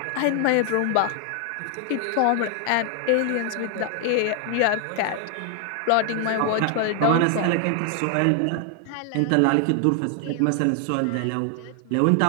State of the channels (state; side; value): different; both; correlation 0.00